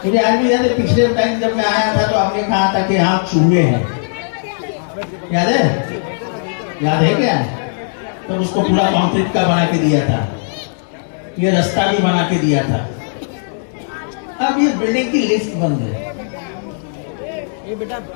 मुझे आज भी याद है, पिछले टाइम जब मैं आया था तो आपने कहा था कि यहाँ चूहे हैं, याद है? याद है क्या? तो उसको पूरा कंक्रीट का बना के दिया था, ये रास्ता भी बना के दिया था। अब ये बिल्डिंग की लिफ्ट बंद है।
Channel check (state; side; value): silent; right; 68 dB below the other